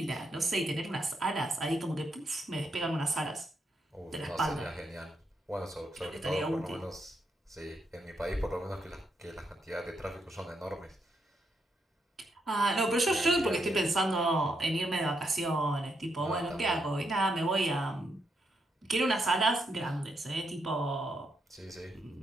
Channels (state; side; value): normal; both; correlation 0.80